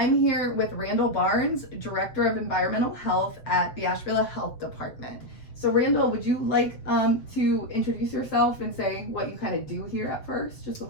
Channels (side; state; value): right; late; 7.6 ms